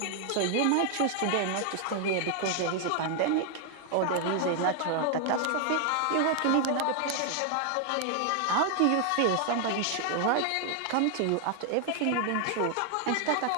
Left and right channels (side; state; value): both; different; correlation 0.00